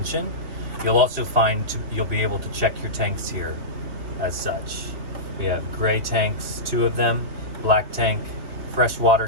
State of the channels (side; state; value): left; late; 3.2 ms